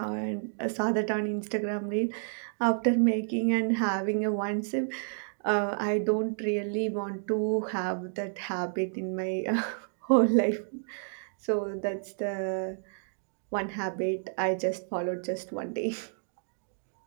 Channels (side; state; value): left; silent; digital silence